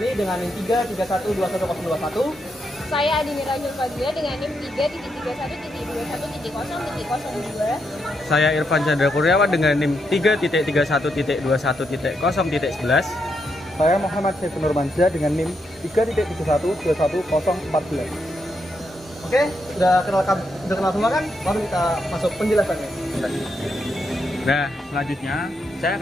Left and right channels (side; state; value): both; normal; correlation 0.81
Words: dengan NIM 3312121. Saya Adi Mirajul Fadlia dengan NIM 3.21.21.0.02. Saya Irfan Chandra Kurniawan dengan NIM 3.31.21.0.11. Saya Muhammad Syekh Nurmansyah dengan NIM 3.71.21.014. Oke, sudah kenal semua kan? Baru kita masuk penjelasannya. Nah, selanjutnya saya